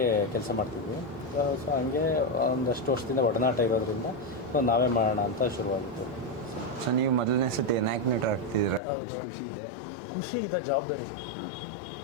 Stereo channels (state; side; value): drops out; right; at 8.8 s